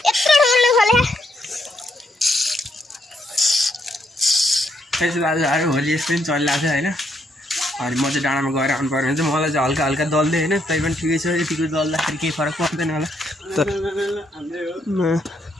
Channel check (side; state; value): both; normal; correlation 0.75